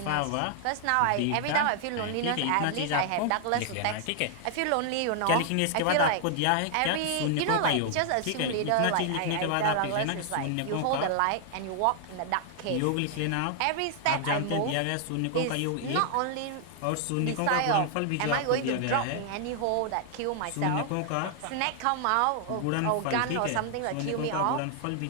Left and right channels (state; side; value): different; both; correlation 0.00